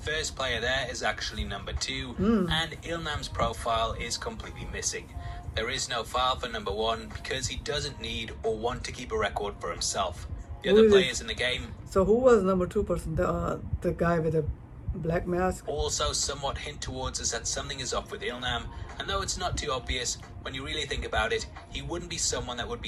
player there is actually number 2, and Il-nam's profile is completely missing. There is no file for number 1 because he doesn't need or want to keep a record for himself. The other players in the game... So who was number 2 person? The guy with the black mask? Also somewhat hint towards us that something is off with Il-nam, and though it's not too obvious, when you really think about it, he wouldn't be someone that would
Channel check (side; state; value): both; identical; correlation 1.00